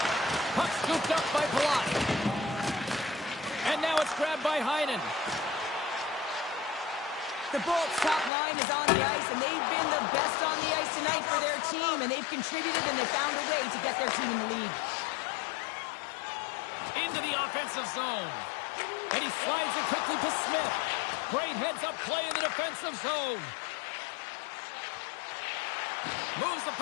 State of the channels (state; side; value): drops out; right; at 8.3 s